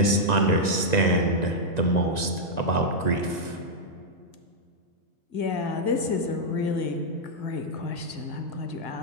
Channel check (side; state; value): right; late; 1.9 ms